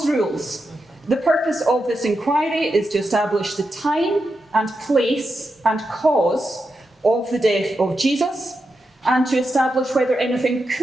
rules, the purpose of this inquiry is to establish the time and place and cause of the death of Jesus, and to establish whether anything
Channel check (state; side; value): normal; both; correlation 0.87